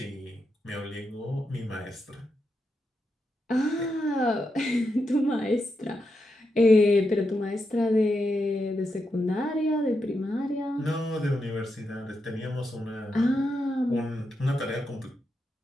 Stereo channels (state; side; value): normal; both; correlation 0.85